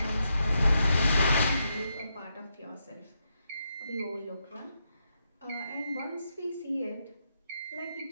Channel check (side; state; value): both; inverted; correlation -0.82